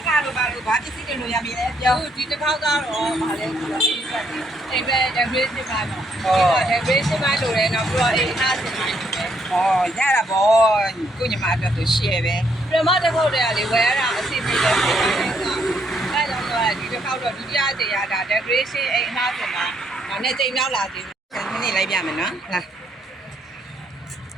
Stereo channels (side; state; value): both; normal; correlation 0.72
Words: ကားလို့ပါလို့ဘာပစ္စည်းတွေလို့ရပြီလဲပြောဒီတစ်ခေါက်ကတော့ဗာလဲဆိုတော့ဒီဆက်တယ်အိမ်ပဲ decoration ပါတော့ဒီက decoration ပါလို့လည်းတော့ပြီးတော့အိမ်အားစင်ပါရတာပေါ့ကိုညီမအတွက်ဆို share ပဲပြမတစ်ခေါက်တည်းကလေဝယ်ရတာအစီအစဉ်ပဲဖြစ်နေတာအဲကြောင့်တော့ဒီတစ်ခေါက်တော့ဒုတိယကြိမ်ရတာ decoration အိမ်အားစင်ပါဒါနဲ့ကြိမ်နောက်လာသေးတယ်ခဏနေလိုက်ပြမယ်နော်လာ